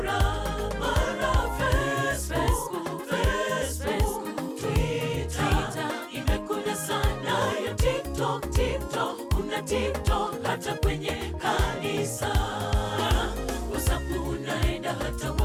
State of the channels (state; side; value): identical; both; correlation 1.00